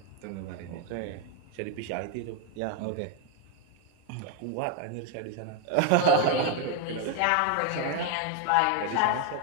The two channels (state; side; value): different; both; correlation 0.01